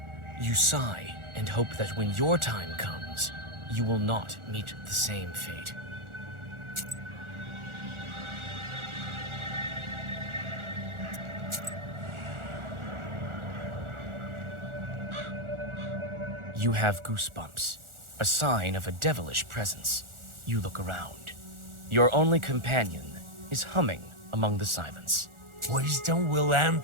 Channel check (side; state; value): left; late; 1.4 ms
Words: You sigh and hope that when your time comes, you will not meet the same fate. You have goosebumps, a sign of a devilish presence. You look around. Your only companion is humming among the silence. Wisdom will